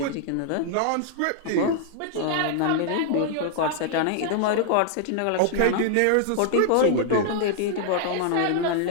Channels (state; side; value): different; both; correlation -0.01